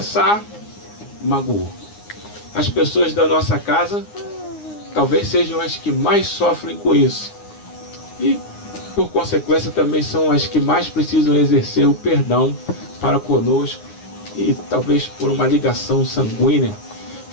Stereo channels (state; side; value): late; right; 9.7 ms